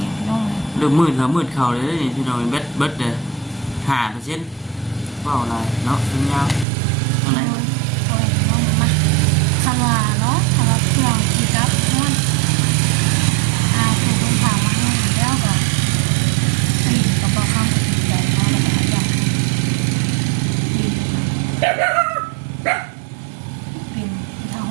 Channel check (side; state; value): left; drops out; at 6.7 s